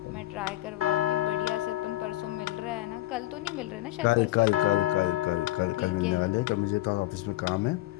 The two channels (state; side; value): quieter; right; 17.0 dB